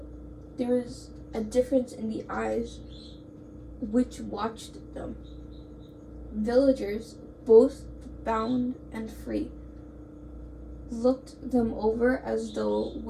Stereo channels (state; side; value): identical; both; correlation 1.00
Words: there was a difference in the eyes which watched them. Villagers, both bound and free, looked them over as though